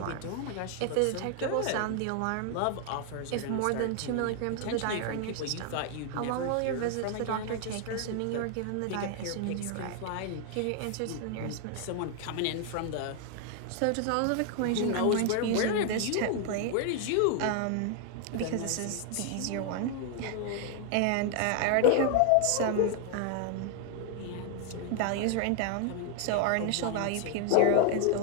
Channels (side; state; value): both; different; correlation 0.00